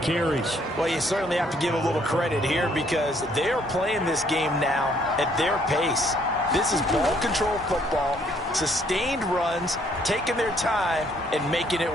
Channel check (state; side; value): normal; both; correlation 0.66